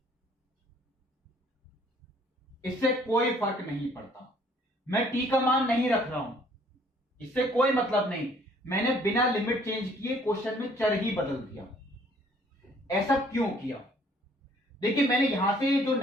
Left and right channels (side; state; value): both; normal; correlation 0.60